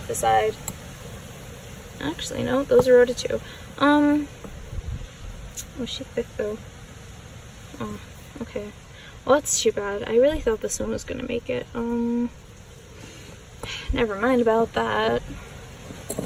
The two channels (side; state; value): both; identical; correlation 1.00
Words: the side. Actually, no, those are rotted too. Oh, she's thick though. Oh, okay. Well, that's too bad. I really thought this one was gonna make it. Never mind about that.